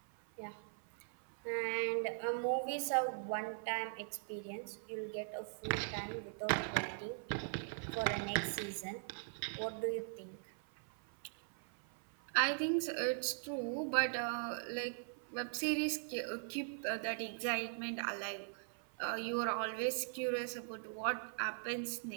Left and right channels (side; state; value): left; silent; 51 dB below the other